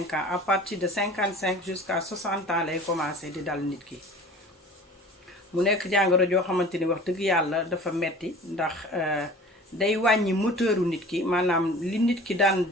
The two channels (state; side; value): normal; both; correlation 0.42